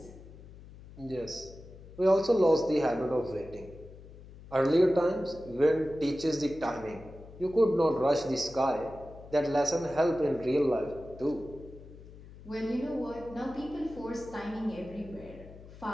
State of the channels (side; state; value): left; noise; hum, 18 dB below the sound